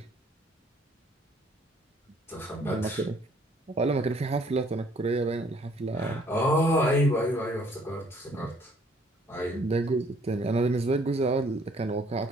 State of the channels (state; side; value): normal; both; correlation 0.61